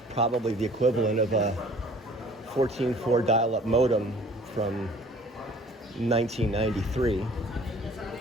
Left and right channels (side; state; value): both; normal; correlation 0.52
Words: probably the equivalent of a 14.4 dial-up modem from 1993.